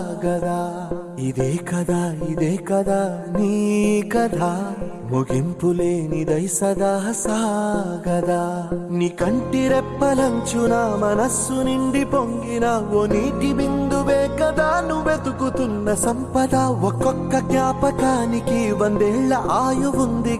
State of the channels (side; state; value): both; identical; correlation 1.00